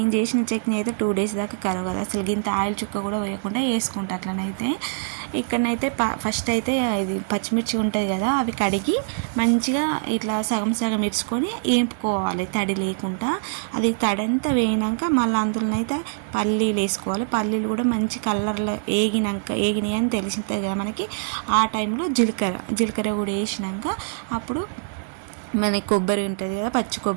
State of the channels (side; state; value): left; silent; digital silence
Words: చేసిన చట్నీ అయితే 2 days దాకా కరవు కదా, అసలు గింత ఆయిల్ చుక్క కూడా వేయకుండా వేసుకుంటా. అట్లనైతే ఇక్కడనైతే ఫస్ట్ అయితే ఇది పచ్చిమిర్చి ఉంటుంది కదా, అవి కడిగి మంచిగా ఇట్లా సగం ఇరుచుకొని వేపుకోవాలి తడి లేకుండా. అది తడంతా వేయినాక మళ్ళీ అందులోనైతే పల్లీలు వేసుకోవాలి. పల్లీలు కూడా మంచి కలర్లో ఏగినాయి అని తెలిసింది కదా మనకి. ఆ టైంలో జీలకర్ర కూడా వేసినాక అప్పుడు మన కొబ్బరి ఉంటుంది కదా, పచ్చి